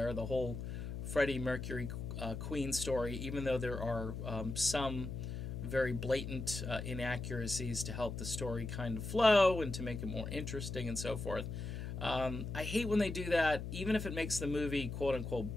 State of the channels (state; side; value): noise; left; hum, 6 dB below the sound